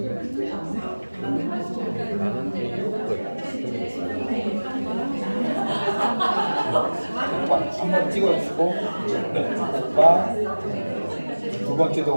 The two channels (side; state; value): both; inverted; correlation -1.00